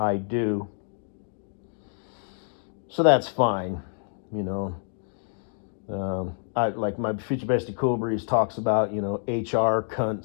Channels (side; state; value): right; silent; 60 dB below the other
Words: do. So that's fine, I like my future bestie Cool Breeze talks about, HR